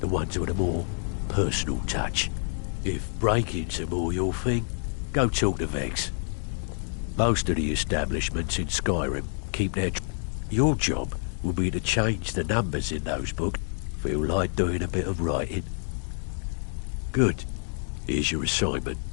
ones with a more personal touch. If breaking's more your thing, go talk to Vex. Most of the establishments in Skyrim keep their... Your job will be to change the numbers in those books. Feel like doing a bit of writing? Good. Here's your assignment.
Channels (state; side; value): silent; right; 60 dB below the other